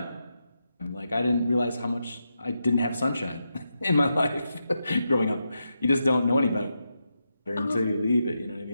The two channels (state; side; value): inverted; both; correlation -0.86